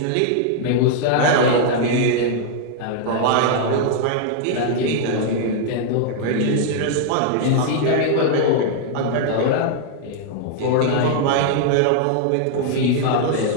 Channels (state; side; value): different; both; correlation 0.00